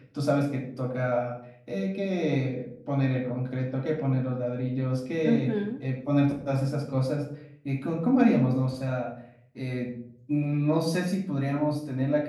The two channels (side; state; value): both; identical; correlation 1.00